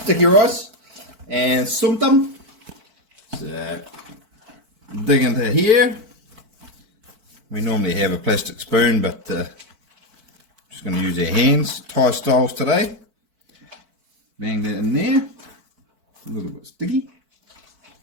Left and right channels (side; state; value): left; late; 4.5 ms